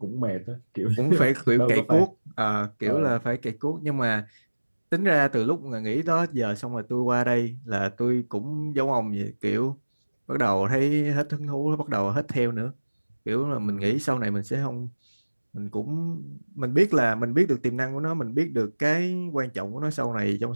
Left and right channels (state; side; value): inverted; both; correlation -1.00